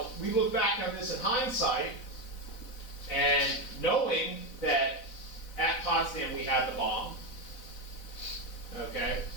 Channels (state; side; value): late; right; 4.0 ms